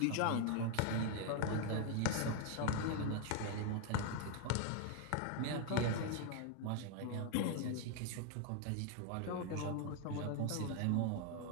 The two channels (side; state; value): both; different; correlation 0.00